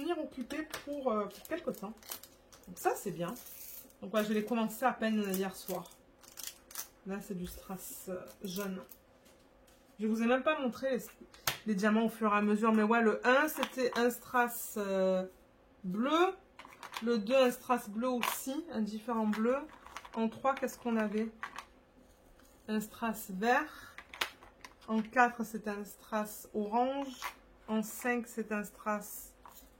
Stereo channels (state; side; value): identical; both; correlation 1.00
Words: occupée pour quelque temps. Donc ça c'est bien. Donc ouais, je l'ai commencé à peine hier soir. Là, c'est du strass jaune. Je vous ai même pas montré les diamants au fur et à mesure. Mais ouais, le 1, c'était un strass bleu. Le 2, un strass bleu aussi, un différent bleu. En 3, qu'est-ce qu'on avait? Un strass vert. En 4, c'est un strass orange. En 5, c'est un strass...